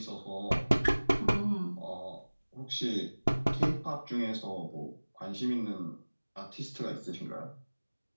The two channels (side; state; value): both; inverted; correlation -1.00